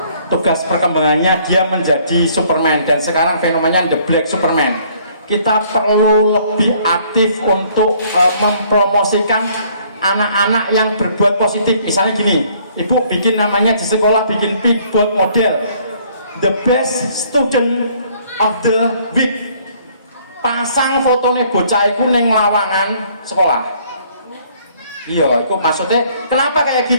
Tugas perkembangannya dia menjadi Superman, dan sekarang fenomenanya the Black Superman. kita perlu lebih aktif untuk mempromosikan anak-anak yang berbuat positif. Misalnya gini, ibu bikin namanya di sekolah, bikin big board model, the best student of the week, pasang fotonya bocah itu neng lawangan sekolah. Iya, itu maksudnya kenapa kayak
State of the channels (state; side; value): inverted; both; correlation -0.61